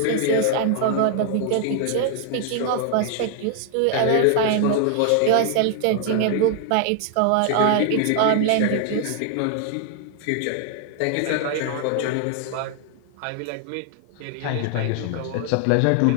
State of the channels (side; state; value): both; different; correlation 0.00